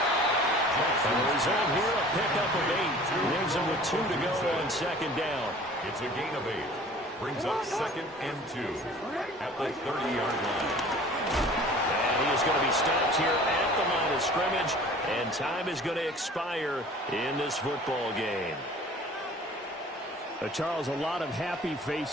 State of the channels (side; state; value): both; normal; correlation 0.47